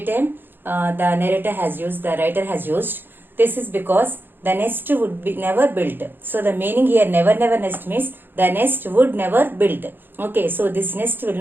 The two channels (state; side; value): late; left; 0.098 ms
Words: time. The narrator has used, the writer has used. This is because the nest would be never built. So the meaning here, never never nest means the nest would never built. Okay. So this nest will